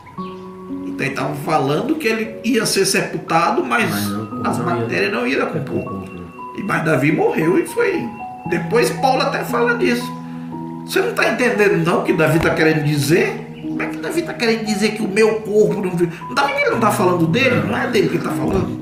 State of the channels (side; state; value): both; identical; correlation 1.00